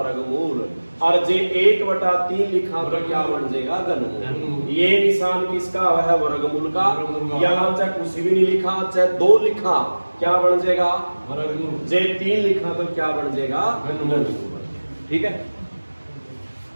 और जे 1/3 लिखा तो क्या बन जाएगा घनमूल। ये निशान किसका है वर्गमूल का। यहाँ चाहे कुछ भी नहीं लिखा, चाहे 2 लिखा क्या बन जाएगा वर्गमूल। जे 3 लिखा तो क्या बन जाएगा घनमूल। ठीक है।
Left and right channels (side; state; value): both; inverted; correlation -1.00